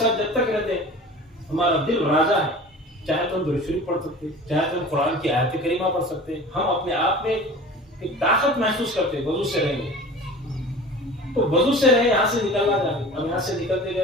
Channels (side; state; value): both; normal; correlation 0.39